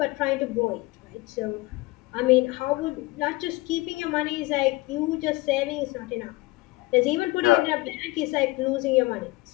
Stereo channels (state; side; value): quieter; right; 22.0 dB